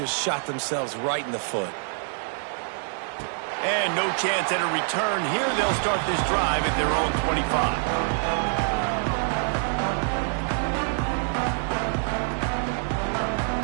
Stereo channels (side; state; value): left; silent; 58 dB below the other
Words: shot themselves right in the foot. And no chance at a return. Here they'll start this drive at their own 25.